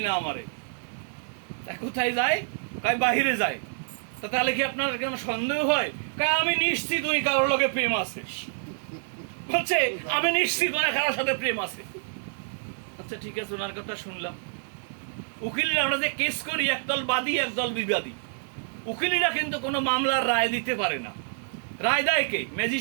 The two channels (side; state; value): left; silent; digital silence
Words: না আমারে। কোথায় যায়? কয় বাহিরে যায়। তা তাহলে কি আপনার কেন সন্দেহ হয়? কয় আমি নিশ্চিত উনি কারোর লগে প্রেম আছে। বলছে আমি নিশ্চিত ওনার কারোর সাথে প্রেম আছে। আচ্ছা ঠিক আছে, ওনার কথা শুনলাম। উকিলরা আমরা যে কেস করি, একদল বাদী একদল বিবাদী, উকিলিরা কিন্তু কোনো মামলার রায় দিতে পারে না। রায় দেয় কে?